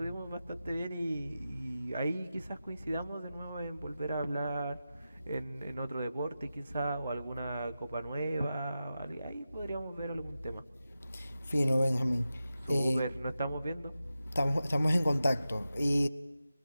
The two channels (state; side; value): inverted; both; correlation -0.92